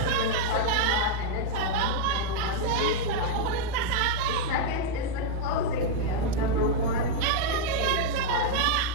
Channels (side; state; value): both; different; correlation -0.01